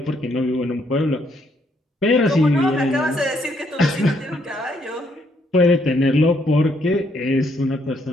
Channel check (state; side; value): normal; both; correlation 0.72